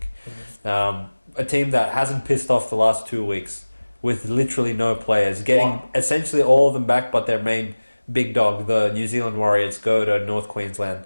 A team that hasn't pissed off the last 2 weeks with literally no players. Getting essentially all of them back, but their main big dog, the New Zealand Warriors, go to North Queensland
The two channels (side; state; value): both; inverted; correlation -1.00